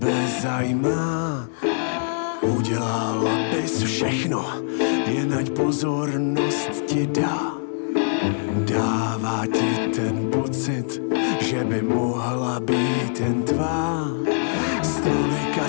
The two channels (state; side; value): silent; right; digital silence